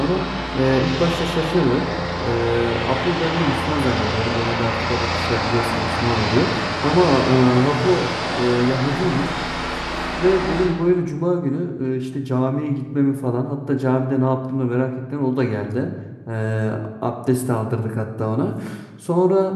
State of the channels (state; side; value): identical; both; correlation 1.00